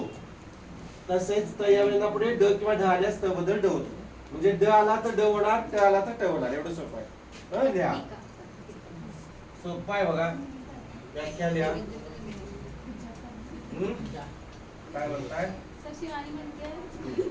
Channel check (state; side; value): identical; both; correlation 1.00